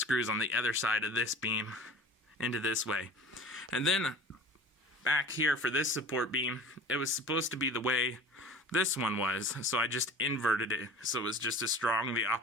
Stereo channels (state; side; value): normal; both; correlation 0.41